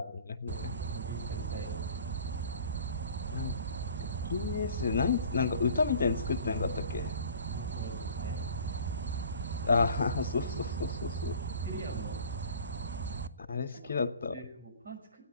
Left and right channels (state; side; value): inverted; both; correlation -0.46